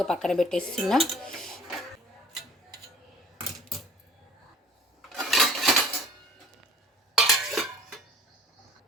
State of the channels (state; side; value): normal; both; correlation 0.49